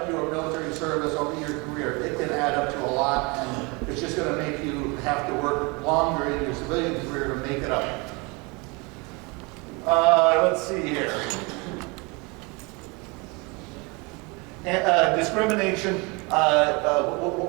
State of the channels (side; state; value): left; quieter; 28.2 dB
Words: your military service over your career, it can add up to a lot, and it's just going to make you have to work longer in your civilian career to make it up. Let's see here. Discrimination.